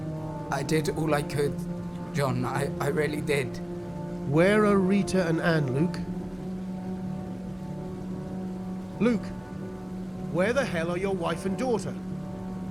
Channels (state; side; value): noise; right; hum, 29 dB below the sound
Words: I did all I could, John. I really did. Where are Rita and Anne, Luke? Luke, where the hell are your wife and daughter?